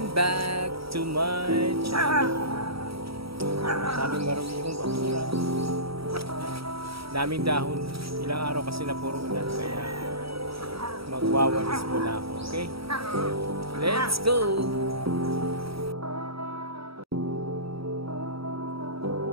back to my channel. Daming maruming bakura. Daming dahon. Ilang araw kasi na puro ulan kaya magwawalis muna ako, okay? Let's go!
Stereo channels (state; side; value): late; left; 0.76 ms